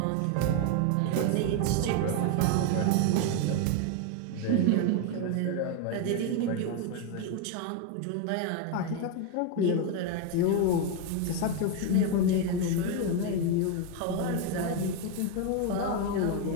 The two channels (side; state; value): both; different; correlation 0.01